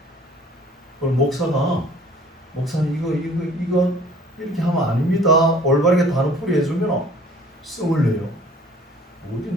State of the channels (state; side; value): normal; both; correlation 0.53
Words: 그럼 목사님 이거 이렇게 하면 아닙니다. 올바르게 단어풀이 해주면 씀을 내요. 어디